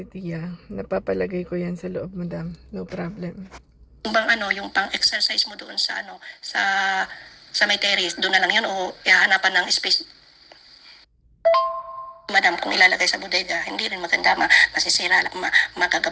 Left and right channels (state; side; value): identical; both; correlation 1.00